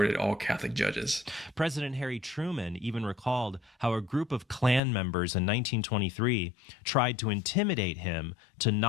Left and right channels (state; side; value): drops out; right; at 4.8 s